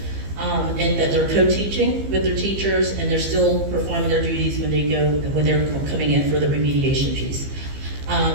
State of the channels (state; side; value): late; left; 15 ms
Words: and that they're co-teaching with their teachers and they're still performing their duties when they're coming in for the remediation piece.